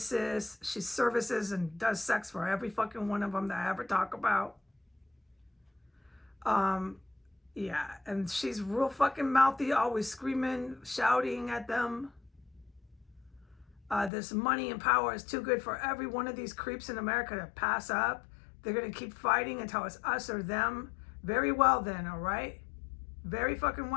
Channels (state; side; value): drops out; right; at 14.1 s